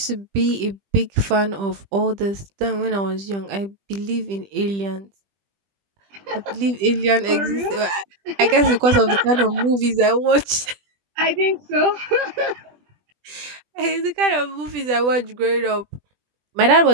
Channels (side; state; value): left; late; 20 ms